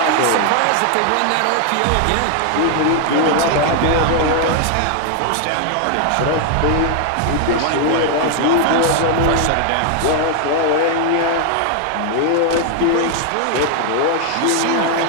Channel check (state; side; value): different; both; correlation 0.00